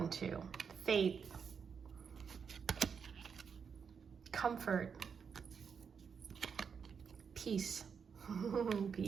to. Faith, comfort, peace,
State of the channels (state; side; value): quieter; left; 6.4 dB